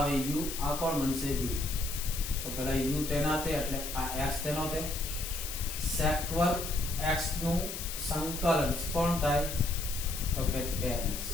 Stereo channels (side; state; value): left; noise; hiss, 6 dB below the sound